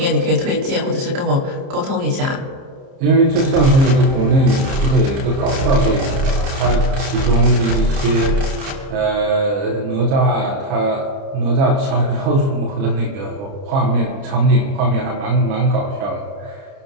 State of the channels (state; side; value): late; left; 30 ms